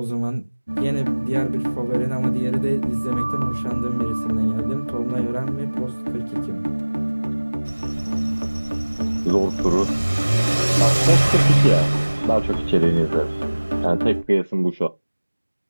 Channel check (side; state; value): both; inverted; correlation -1.00